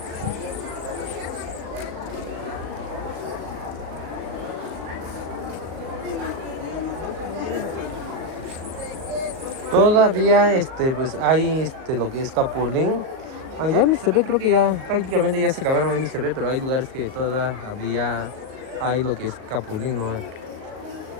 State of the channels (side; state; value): left; late; 37 ms